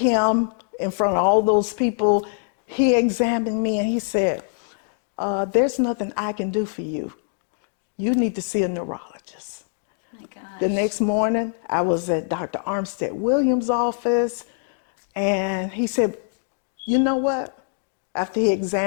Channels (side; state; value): right; silent; 63 dB below the other